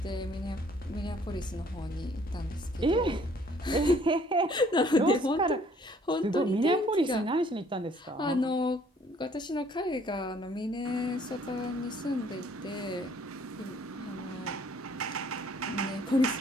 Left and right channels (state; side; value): normal; both; correlation 0.60